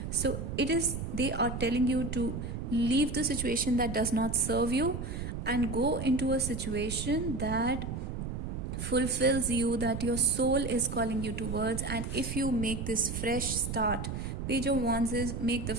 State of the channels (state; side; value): noise; right; rumble, 5 dB below the sound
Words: So they are telling you to leave the situation that does not serve you and go into a situation that fulfills you, that your soul is calling you towards. And if you make this fresh start, Page of Wands is make the